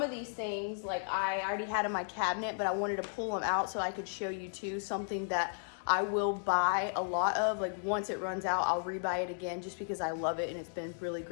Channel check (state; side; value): silent; right; 55 dB below the other